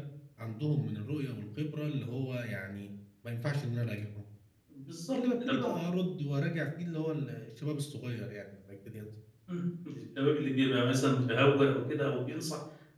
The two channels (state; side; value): identical; both; correlation 1.00